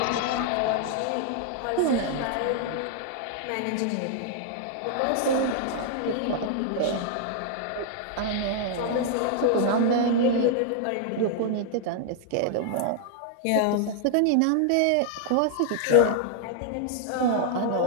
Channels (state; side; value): different; both; correlation -0.01